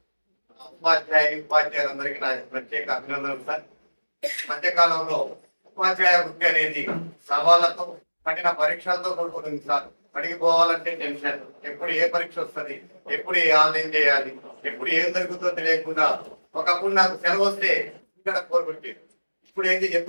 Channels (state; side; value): inverted; both; correlation -1.00